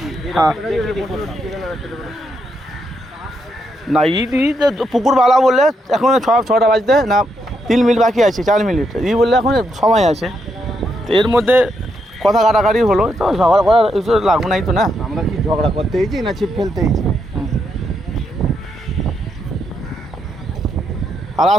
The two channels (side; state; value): both; normal; correlation 0.79